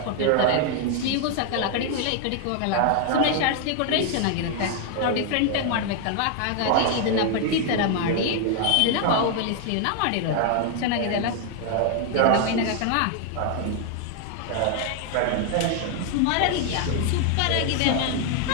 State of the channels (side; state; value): both; different; correlation 0.00